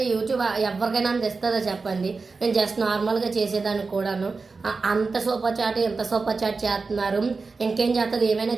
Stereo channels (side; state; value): left; quieter; 4.3 dB